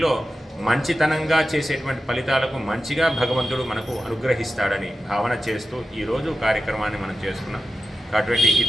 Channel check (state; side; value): normal; both; correlation 0.92